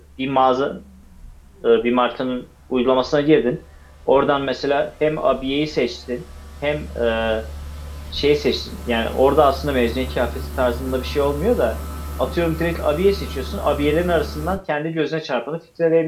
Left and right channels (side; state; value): both; identical; correlation 1.00